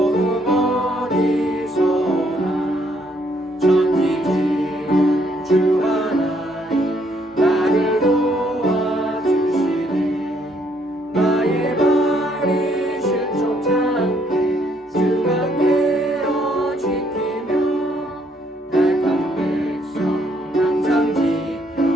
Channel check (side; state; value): both; normal; correlation 0.69